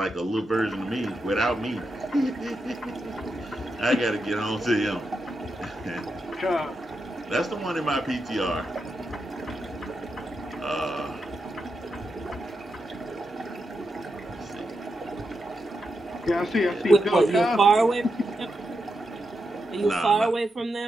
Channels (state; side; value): normal; both; correlation 0.86